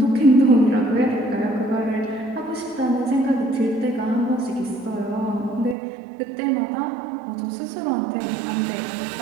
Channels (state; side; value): drops out; left; at 5.8 s